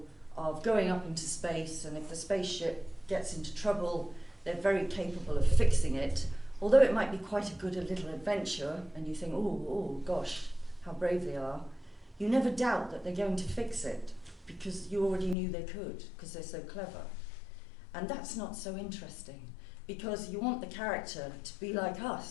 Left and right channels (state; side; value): drops out; right; at 15.4 s